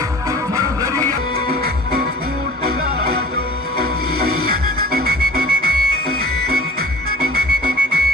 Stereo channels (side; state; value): both; normal; correlation 0.44